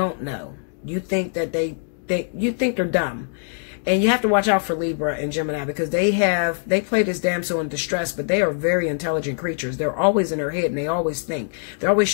know. You think that you think they're dumb. And you have to watch out for Libra and Gemini because they play this damsel in distress, but they are very intelligent creatures. They're always in their head and they always think. They're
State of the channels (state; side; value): silent; right; 64 dB below the other